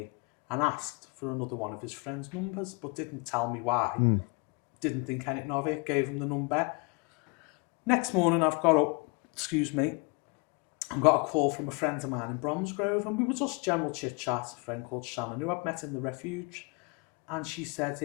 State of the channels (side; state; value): right; quieter; 30.5 dB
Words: and asked for another one of his friend's numbers, but didn't tell me why. Didn't think anything of it, gave him the number. Next morning, I've got up, and got a call from a friend of mine in Bromsgrove, and we were just general chit-chat, a friend called Shannon, who I'd met in the refuge. And she said,